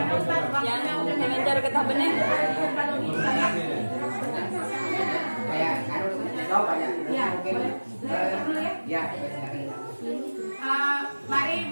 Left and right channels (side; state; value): both; inverted; correlation -1.00